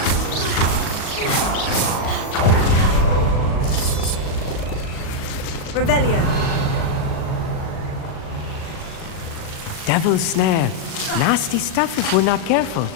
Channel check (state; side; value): late; right; 38 ms